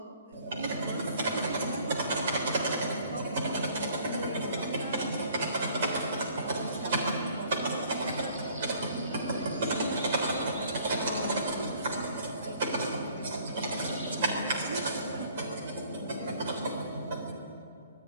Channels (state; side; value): inverted; both; correlation -0.57